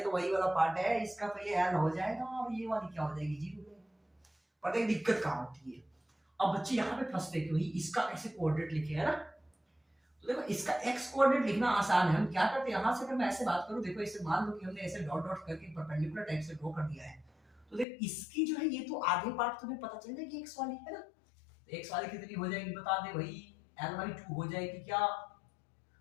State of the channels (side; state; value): right; drops out; at 17.9 s